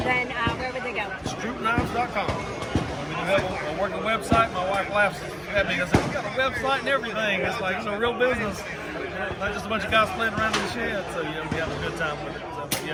then where would they go? StroupKnives.com. working website. My wife laughs at me because we got a website and everything. It's like, real business. Not just a bunch of guys playing around in the shed. So, we have a good time with it. So, it's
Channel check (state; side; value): identical; both; correlation 1.00